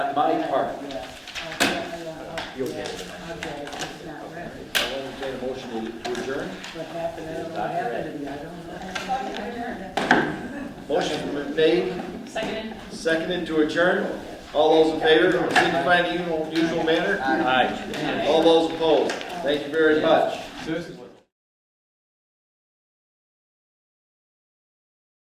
my part. You'll get it. I'll entertain a motion to adjourn. Motion's been made, seconded to adjourn. All those in favor, signify in the usual manner. Aye. All those opposed. Thank you very much.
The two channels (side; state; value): both; identical; correlation 1.00